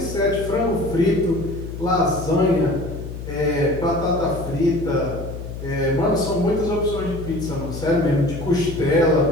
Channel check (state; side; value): noise; left; hum, 9 dB below the sound